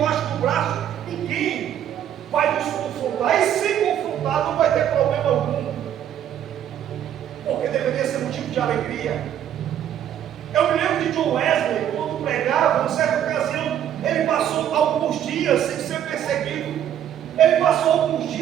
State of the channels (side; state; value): left; quieter; 10.3 dB